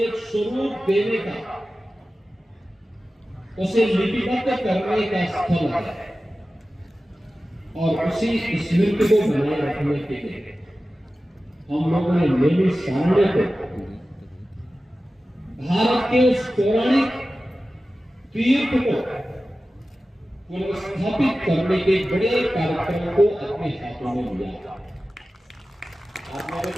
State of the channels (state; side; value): normal; both; correlation 0.95